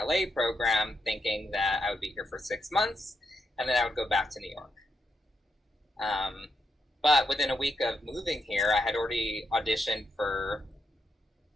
program thinking that I would be here for 6 months and then I would go back to New York. But within a week of moving here, I had already auditioned for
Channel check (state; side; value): normal; both; correlation 0.81